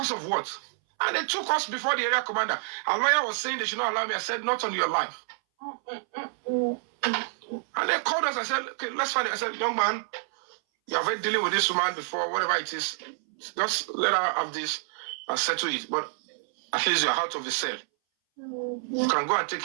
of what? And they took us before the area commander. Our lawyer was saying they should not allow me. I said, not on your life. And they called us. I said, okay, let's find it. I said, young man, you have been dealing with this woman before, whatever it is. Just let her have this and settle it. But at least you're out of the cell. You can go and take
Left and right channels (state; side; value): silent; left; 59 dB below the other